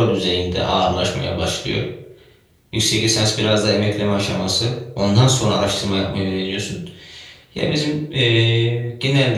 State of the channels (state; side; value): identical; both; correlation 1.00